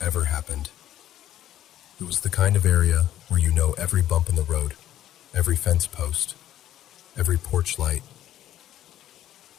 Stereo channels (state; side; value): quieter; right; 12.4 dB